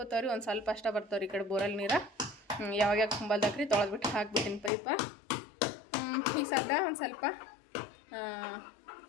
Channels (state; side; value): drops out; right; at 4.7 s